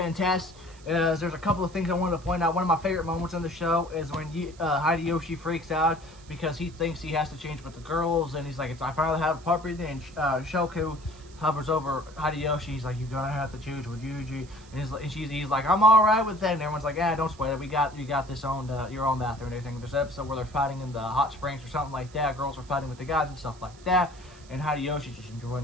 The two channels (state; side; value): noise; right; hiss, 24 dB below the sound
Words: Test. There's a couple of things I wanted to point out. One of my favorite moments on the show is when Hideyoshi freaks out because he thinks he has to change with the girls, and he's like, I finally have a puppy, and Shoku hovers over Hideyoshi. He's like, you're gonna have to choose with Yuji, and he's like, I'm all right with that. And everyone's like, yeah, don't sweat it. You got this your own bathroom and everything. There's an episode where they're fighting in the hot springs or something like that. Girls are fighting with the guys and stuff like that. And Hideyoshi's just enjoying